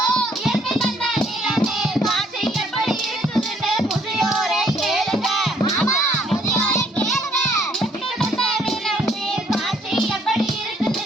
இயற்கை தந்த நிலமே காட்சி எப்படி இருக்குதுன்னு முதியோரை கேளுங்க. முதியோரை கேளுங்க. இயற்கை தந்த நிலமே காட்சி எப்படி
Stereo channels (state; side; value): normal; both; correlation 0.64